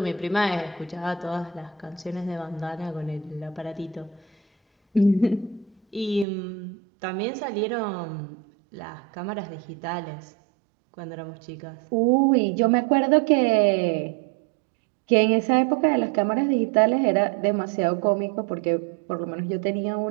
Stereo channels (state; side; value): drops out; left; at 6.2 s